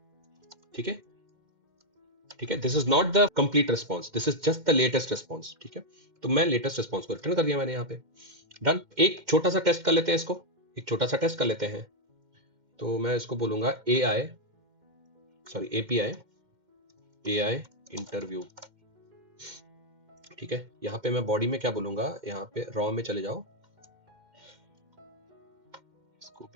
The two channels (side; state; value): left; late; 2.1 ms